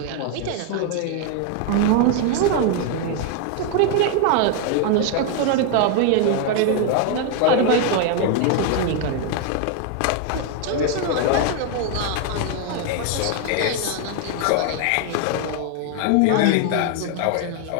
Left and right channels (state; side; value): different; both; correlation 0.01